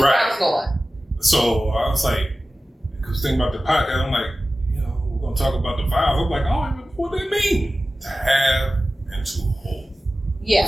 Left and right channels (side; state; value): both; normal; correlation 0.96